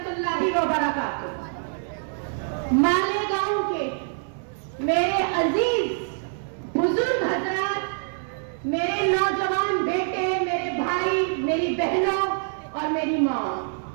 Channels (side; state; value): left; silent; digital silence